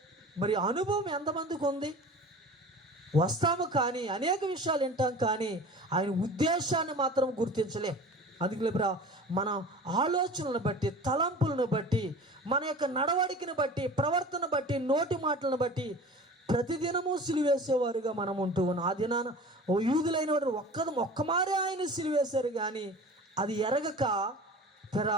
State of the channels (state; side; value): normal; both; correlation 0.39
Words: మరి అనుభవం ఎంతమందికి ఉంది? వస్తాము కానీ అనేక విషయాలు వింటాం, కానీ ఆయన ఉద్దేశాన్ని మాత్రం గుర్తించలేం. అందుకే మన ఆలోచనలను బట్టి, తలంపులను బట్టి, మన యొక్క నడవడికను బట్టి, ప్రవర్తన బట్టి, నోటి మాటలను బట్టి ప్రతిదినము సిలువేసేవారుగా మనం ఉంటూ ఉన్నాం. ఆ దినాన యూదులైన వారు ఒక్కమారే ఆయన సిలువేశారు, కానీ అది ఎరగక